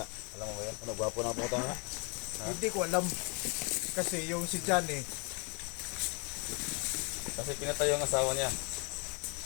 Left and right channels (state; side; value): quieter; right; 33.6 dB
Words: Alam mo ba yan? Ano, gwapo na po tayo. Hindi ko alam. Kasi yung si Johnny, Kasi pinatay yung asawa niya.